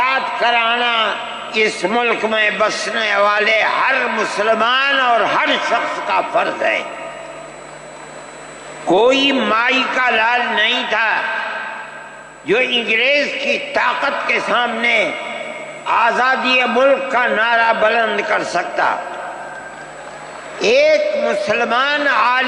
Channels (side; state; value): both; identical; correlation 1.00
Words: کرانا اس ملک میں بسنے والے ہر مسلمان اور ہر شخص کا فرض ہے۔ کوئی مائی کا لال نہیں تھا جو انگریز کی طاقت کے سامنے آزادی ملک کا نعرہ بلند کر سکتا۔ ایک مسلمان